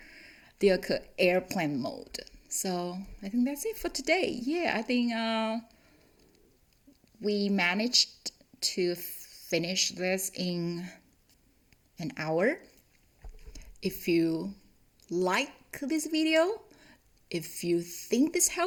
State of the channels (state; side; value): identical; both; correlation 1.00